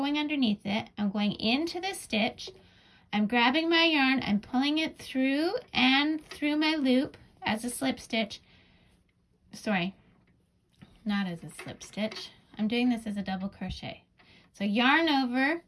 underneath it. I'm going into the stitch. I'm grabbing my yarn. I'm pulling it through and through my loop as a slip stitch. Sorry, not as a slip stitch. I'm doing this as a double crochet. So yarn over,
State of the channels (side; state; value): both; identical; correlation 1.00